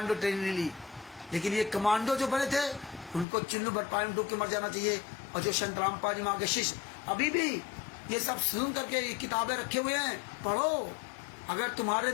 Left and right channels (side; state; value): right; drops out; at 3.2 s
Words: ट्रेनिंग नहीं ली। लेकिन ये कमांडो जो बने थे, उनको चुल्लू भटपाई में डूब के मर जाना चाहिए। और जो संत रामपाल जी महाराज के शिष्य अभी भी ये सब सुन करके ये किताबें रखे हुए हैं, पढ़ो। अगर तुम्हारे